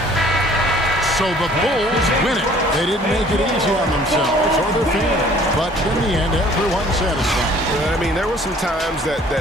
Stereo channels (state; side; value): normal; both; correlation 0.54